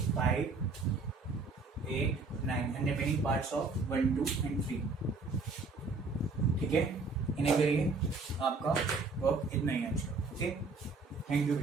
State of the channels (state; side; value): quieter; left; 3.9 dB